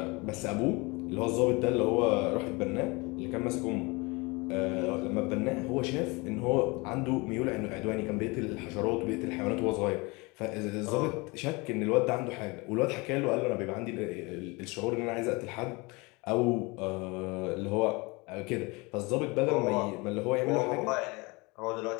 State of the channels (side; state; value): right; quieter; 26.2 dB